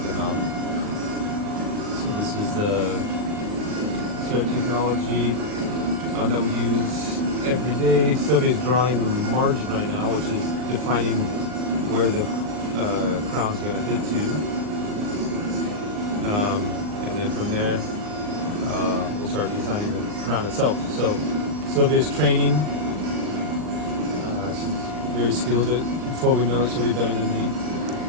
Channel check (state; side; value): late; left; 39 ms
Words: mouth. So this is the technology that we use every day. Sylvia's drawing the margin right now, which is defining where the crown's going to hit to. And then from there, we'll start designing the crown itself. So Sylvia's training. She's very skilled. Before we know it, she'll be better than me,